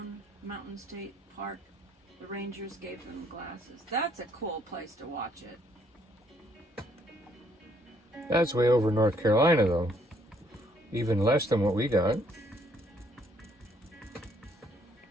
Mountain State Park. The rangers gave them glasses. That's a cool place to watch it. That's way over North Carolina, though. Even less than what we got.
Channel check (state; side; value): normal; both; correlation 0.67